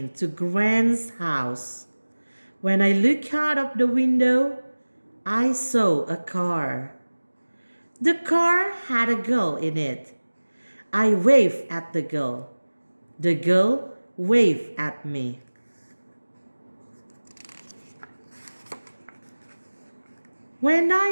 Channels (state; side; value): inverted; both; correlation -1.00